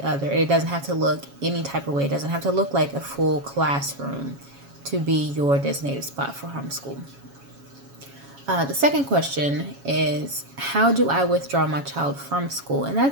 other. It doesn't have to look any type of way. It doesn't have to look like a full classroom to be your designated spot for homeschool. The second question is, how do I withdraw my child from school? And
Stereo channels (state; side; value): late; left; 7.2 ms